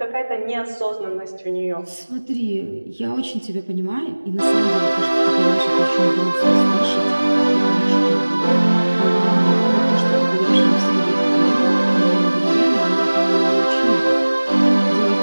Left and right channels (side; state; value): both; inverted; correlation -1.00